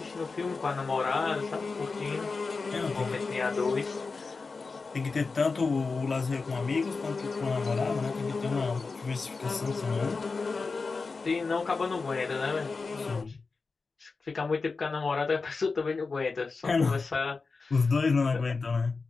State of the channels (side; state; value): right; quieter; 4.3 dB